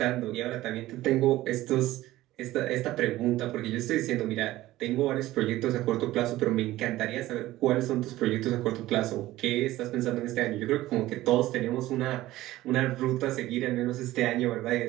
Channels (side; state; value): left; quieter; 16.3 dB